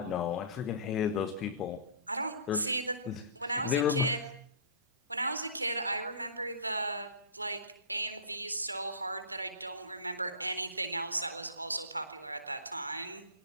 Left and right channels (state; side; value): inverted; both; correlation -0.36